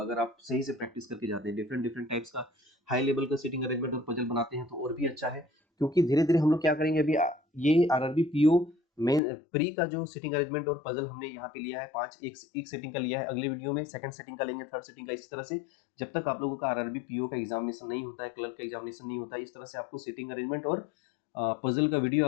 आप सही से प्रैक्टिस करके जाते हैं। डिफरेंट डिफरेंट टाइप्स का हाई लेवल का सिटिंग अरेंजमेंट और पजल बनाते हैं तो और भी अच्छा है, क्योंकि धीरे धीरे हम लोग क्या करेंगे, अभी ये आरआरबी पीओ मेन प्री का जो सिटिंग अरेंजमेंट और पजल हमने यहाँ पे लिया है 5, एक सेटिंग का लिया है, अगली वीडियो में सेकंड सेटिंग का लेंगे, थर्ड सेटिंग का, इस तरह से जब तक आप लोगों का आरआरबी पीओ का एग्जामिनेशन नहीं होता है, क्लर्क का एग्जामिनेशन नहीं होता है, इस तरह से आपको सिटिंग अरेंजमेंट और पजल का वीडियो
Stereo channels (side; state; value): right; drops out; at 9.2 s